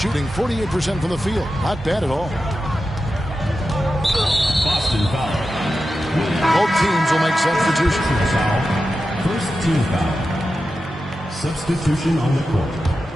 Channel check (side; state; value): both; normal; correlation 0.91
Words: 48% from the field. Not bad at all. Boston foul. Both teams will make substitutions. First team foul. Substitution on the court.